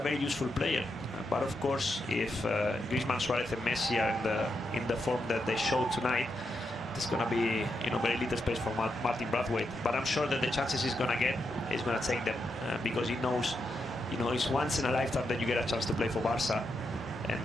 very useful player. But of course, if Griezmann, Suarez, and Messi are in the form that they showed tonight, there's going to be, you know, very little space for Martin Braithwaite. But I'm sure that the chances he's going to get, he's going to take them, because he knows, you know, it's once in a lifetime that you get a chance to play for Barca,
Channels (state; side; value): normal; both; correlation 0.83